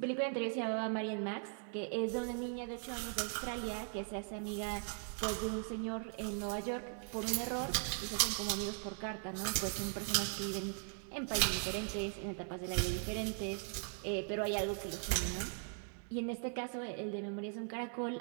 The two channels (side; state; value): left; silent; 51 dB below the other